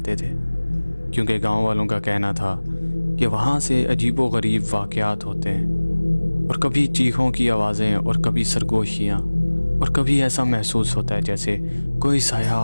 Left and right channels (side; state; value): both; inverted; correlation -1.00